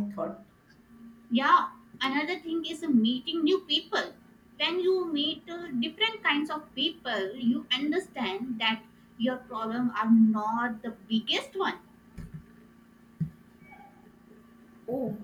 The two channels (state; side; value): identical; both; correlation 1.00